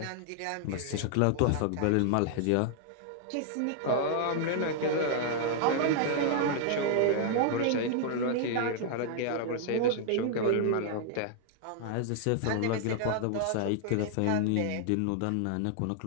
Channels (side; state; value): both; different; correlation 0.00